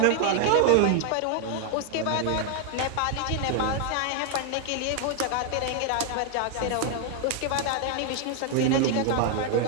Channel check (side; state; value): both; different; correlation 0.00